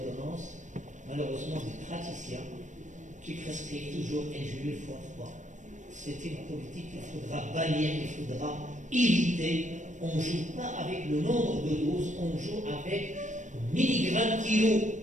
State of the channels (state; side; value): late; left; 0.35 ms